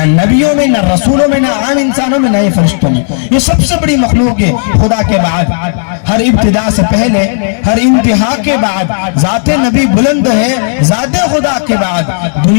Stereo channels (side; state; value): right; silent; digital silence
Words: نبیوں میں، نہ رسولوں میں، نہ عام انسانوں میں، نہ ہی فرشتوں میں۔ یہ سب سے بڑی مخلوق ہے خدا کے بعد، ہر ابتدا سے پہلے، ہر انتہا کے بعد، ذات نبی بلند ہے، ذات خدا کے بعد